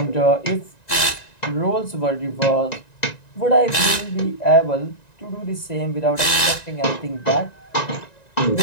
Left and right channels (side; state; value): right; late; 1.9 ms